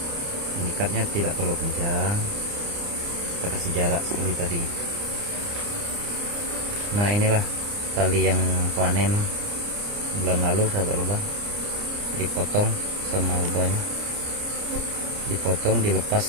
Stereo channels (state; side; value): late; left; 29 ms